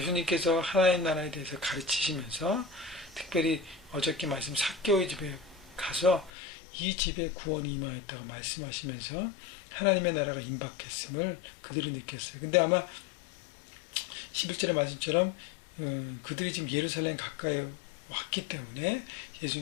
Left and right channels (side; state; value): right; drops out; at 6.3 s